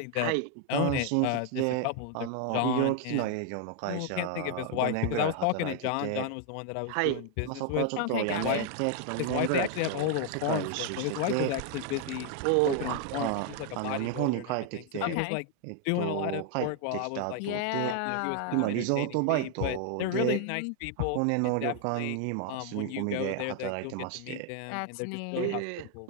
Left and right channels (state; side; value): different; both; correlation 0.00